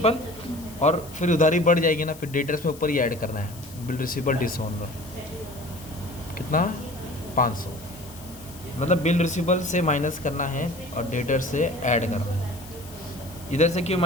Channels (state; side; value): noise; left; hiss, 18 dB below the sound